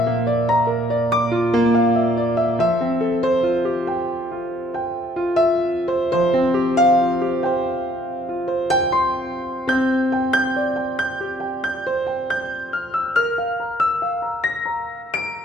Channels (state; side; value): normal; both; correlation 0.64